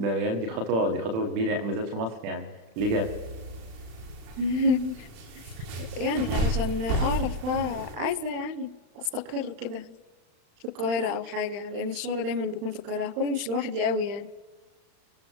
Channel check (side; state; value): left; late; 36 ms